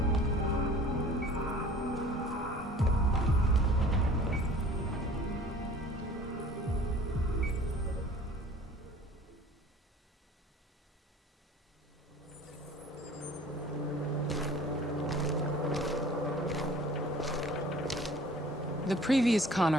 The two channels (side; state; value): both; normal; correlation 0.48